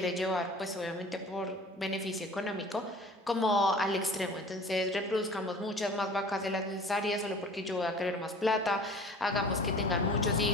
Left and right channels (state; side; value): normal; both; correlation 0.44